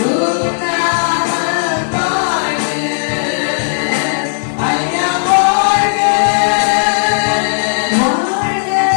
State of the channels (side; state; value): right; silent; digital silence